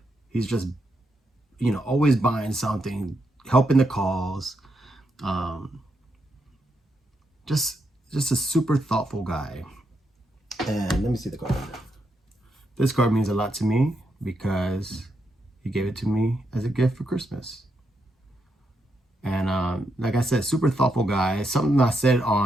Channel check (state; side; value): normal; both; correlation 0.81